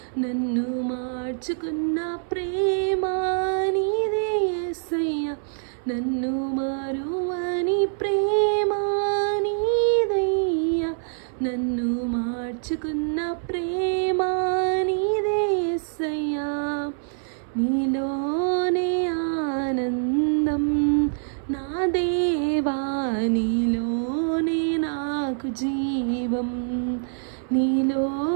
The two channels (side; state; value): left; silent; 62 dB below the other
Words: నన్ను మార్చుకున్న ప్రేమ నీదే యేసయ్యా. నన్ను మారువని ప్రేమ నీదయ్యా, నన్ను మార్చుకున్న ప్రేమ నీదే యేసయ్యా. నీలోనే ఆనందం నా దేవా, నీలోనే నాకు జీవం,